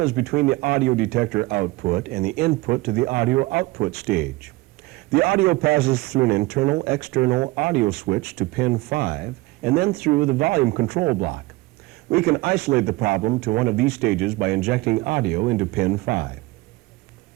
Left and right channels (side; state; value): left; quieter; 21.3 dB